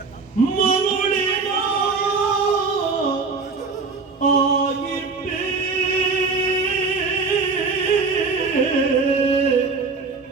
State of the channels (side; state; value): left; quieter; 4.4 dB